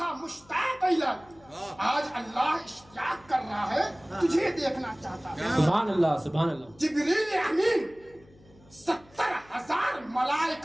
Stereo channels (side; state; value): left; noise; hum, 27 dB below the sound